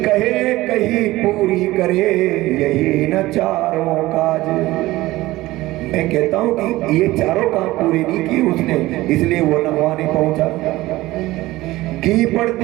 कहे कहीं पूरी करे यही न चारों काज। मैं कहता हूं कि ये चारों काम पूरे नहीं किए उसने, इसलिए वो वहां नहीं पहुंचा। घी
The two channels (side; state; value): left; quieter; 18.1 dB